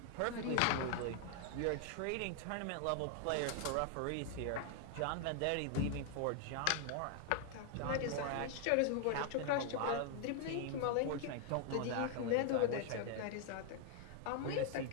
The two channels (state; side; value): different; both; correlation 0.00